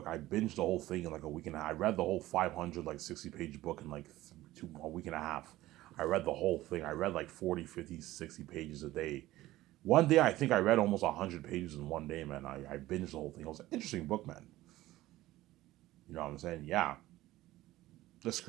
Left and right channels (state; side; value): quieter; left; 16.3 dB